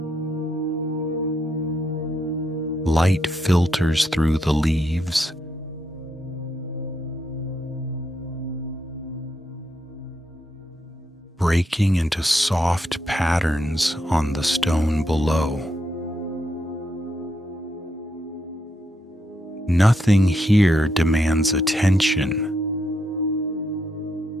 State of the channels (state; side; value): normal; both; correlation 0.80